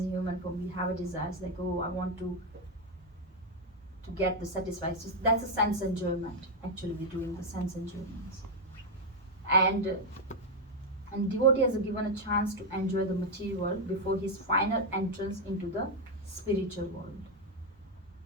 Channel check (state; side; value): normal; both; correlation 0.03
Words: a human form, we have a desires I want to get the satisfied. So that's a sense enjoyment. Actually, we're doing the sense enjoyments. And devotee has given a chance to enjoy the material world before his final entrance into the spiritual world.